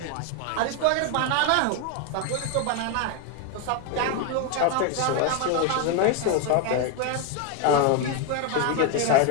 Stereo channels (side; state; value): both; different; correlation 0.01